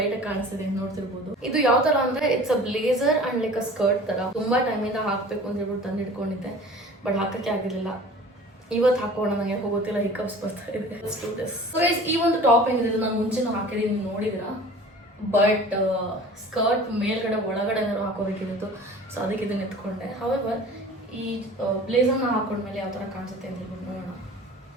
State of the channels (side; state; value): both; normal; correlation 0.43